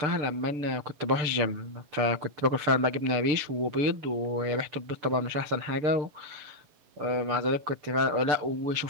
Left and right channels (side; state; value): left; late; 6.8 ms